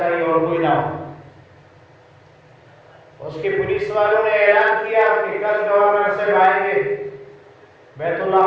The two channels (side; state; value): both; identical; correlation 1.00